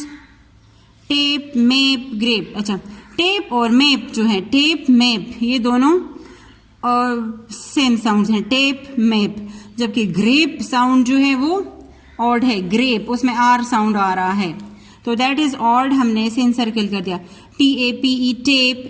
Tape, map, grape. अच्छा, टेप और मैप जो है, टेप, मैप, ये दोनों सेम साउंड्स हैं. Tape, map. जबकि ग्रेप साउंड जो है वो ऑड है. ग्रेप, उसमें R साउंड आ रहा है, तो दैट इज ऑड. हमने इसे इनसर्कल कर दिया. TAPE,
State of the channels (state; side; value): identical; both; correlation 1.00